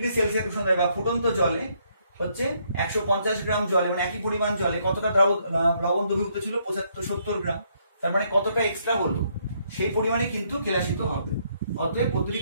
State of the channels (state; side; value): inverted; both; correlation -0.71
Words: সেলসিয়াস উষ্ণতায় বা ফুটন্ত জলে হচ্ছে 150 গ্রাম জলে, মানে একই পরিমাণ জলে কতটা লবণ দ্রবীভূত ছিল, 70 গ্রাম। তার মানে কতটা এক্সট্রা হলো সেই পরিমাণে কিন্তু কেলাসিত হবে। অতএব